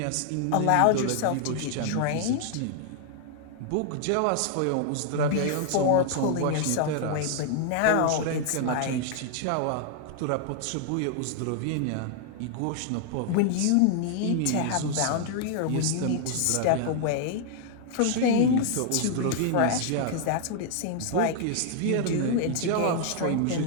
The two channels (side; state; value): both; different; correlation 0.00